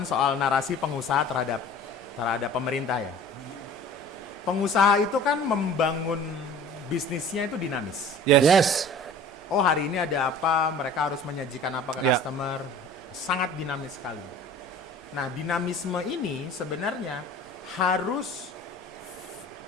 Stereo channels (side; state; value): both; normal; correlation 0.44